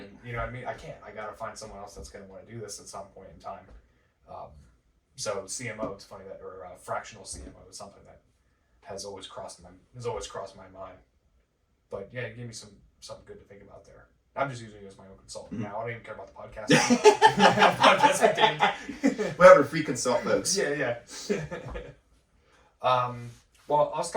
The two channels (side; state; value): both; identical; correlation 1.00